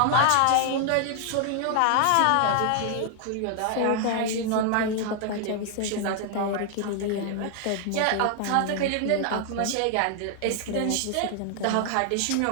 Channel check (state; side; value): different; both; correlation 0.00